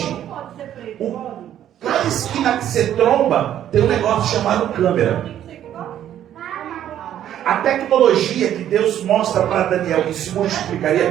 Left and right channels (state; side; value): quieter; left; 11.0 dB